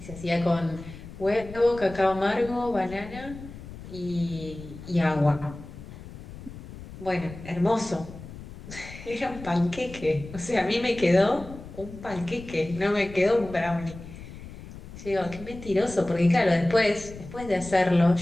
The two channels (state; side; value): noise; left; rumble, 14 dB below the sound